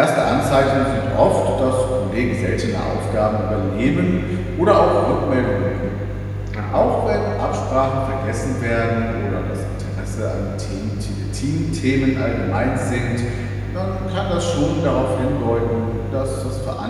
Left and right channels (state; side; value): identical; both; correlation 1.00